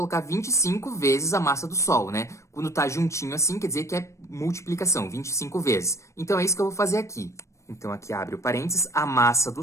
25 vezes a massa do Sol, Quando tá juntinho assim, quer dizer que é multiplicação, 25 vezes. Então, é isso que eu vou fazer aqui. Então, aqui abre o parênteses, a massa do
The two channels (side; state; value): right; late; 0.14 ms